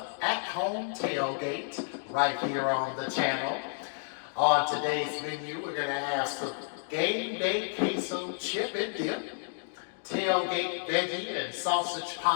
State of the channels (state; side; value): silent; right; digital silence